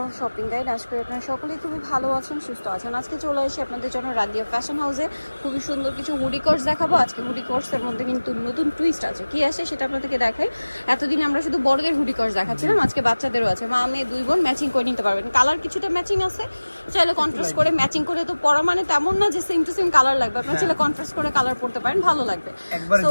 shopping guide. আজকে আপনারা সকলেই খুবই ভালো আছেন, সুস্থ আছেন। আজকে চলে আসি আপনাদের জন্য রাদিয়া ফ্যাশন হাউসে খুবই সুন্দর কিছু হুডি কোর্স দেখাবো। আজকে হুডি কোর্সের মধ্যে কিন্তু নতুন টুইস্ট আছে, কি আসে সেটা আপনাদেরকে দেখাই। এতদিন আমরা শুধু বড়দের হুডি কোর্স দেখাচ্ছিলাম, আজকে বাচ্চাদেরও আছে। মা মেয়ে দুই বোন ম্যাচিং করে নিতে পারবেন। কালার কিছুটা ম্যাচিং আছে, চাইলে কন্ট্রাস্ট করে ম্যাচিং করে তো পরা মানে তেমন না যে সেম টু সেম কালার লাগবে, আপনারা চাইলে কন্ট্রাস্ট করে কালার পড়তে পারেন, ভালো লাগবে। তো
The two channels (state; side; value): inverted; both; correlation -1.00